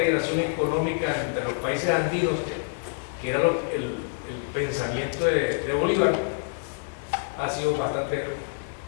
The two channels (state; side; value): silent; right; digital silence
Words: económica entre los países andinos, que era el pensamiento de Bolívar, ha sido bastante